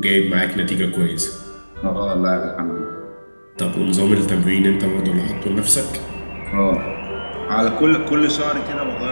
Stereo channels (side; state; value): both; inverted; correlation -1.00